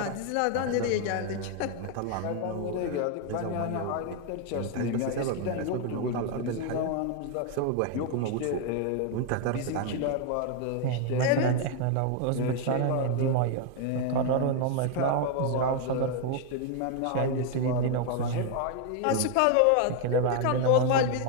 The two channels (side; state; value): both; different; correlation 0.01